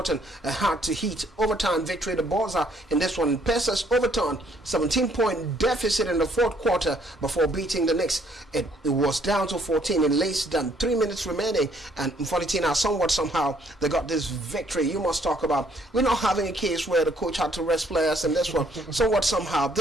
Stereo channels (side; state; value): both; normal; correlation 0.65